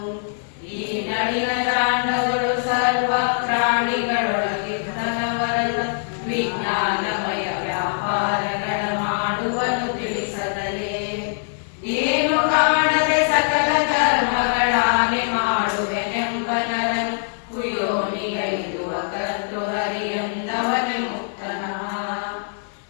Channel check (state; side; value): silent; right; 64 dB below the other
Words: ಈ ನಳಿನ ಜಾಂಡಗಳು ಸರ್ವ ಪ್ರಾಣಿಗಳೊಳಗಿದ್ದನವರನ್ನ ವಿಜ್ಞಾನಮಯ ವ್ಯಾಪಾರಗಳ ಮಾಡುವನು ತಿಳಿಸದಲೇ ಏನು ಕಾಣದೆ ಸಕಲ ಕರ್ಮಗಳಾನೆ ಮಾಡುವೆನೆಂಬನರನ್ನು ಕುಯೋನಿಗೈದುವ ಕರ್ತೃ ಹರಿಯಂದವನ ಮುಕ್ತನಃ